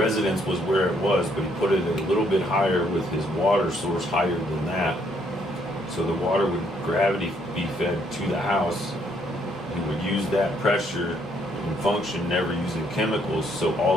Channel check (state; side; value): normal; both; correlation 0.70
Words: was where it was, but he put it a little bit higher with his water source higher than that. So the water would gravity be fed to the house. He would use that pressure and function, never using chemicals. So